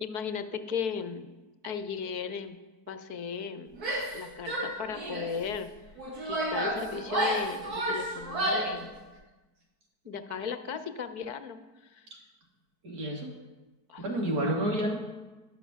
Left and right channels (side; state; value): left; late; 4.6 ms